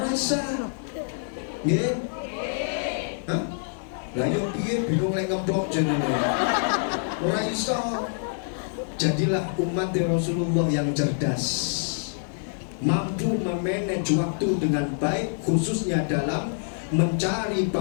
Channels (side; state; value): right; silent; 61 dB below the other